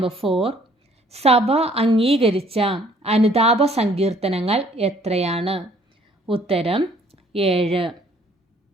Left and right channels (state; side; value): normal; both; correlation 0.60